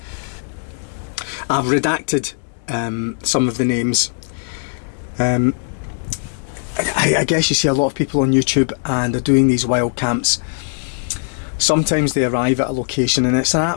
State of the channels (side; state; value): right; silent; digital silence